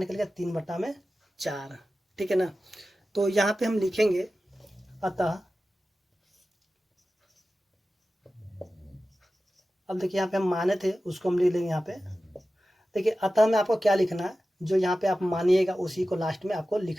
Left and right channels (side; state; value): both; normal; correlation 0.94